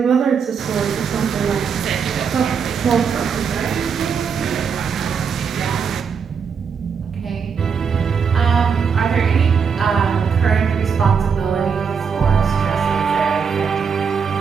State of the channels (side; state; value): left; quieter; 6.4 dB